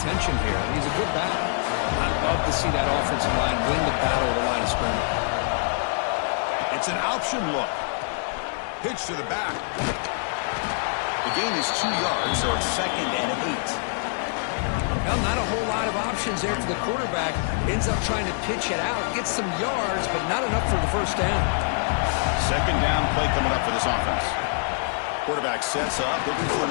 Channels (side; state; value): right; silent; 61 dB below the other